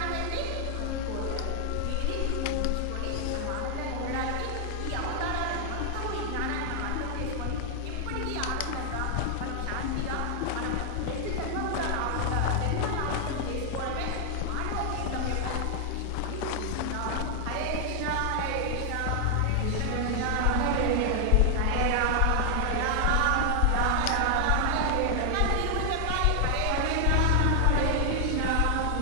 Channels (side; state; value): both; different; correlation 0.00